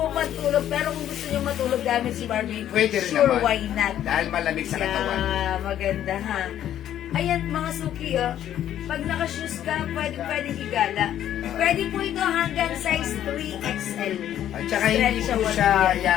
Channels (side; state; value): right; quieter; 11.2 dB